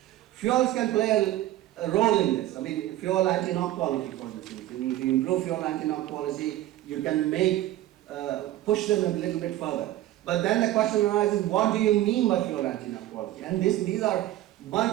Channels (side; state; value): left; quieter; 14.4 dB